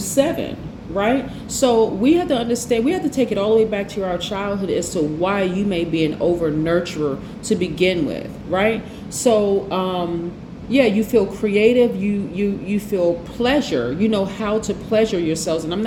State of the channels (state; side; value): identical; both; correlation 1.00